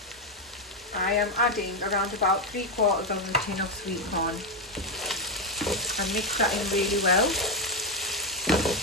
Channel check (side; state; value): both; normal; correlation 0.06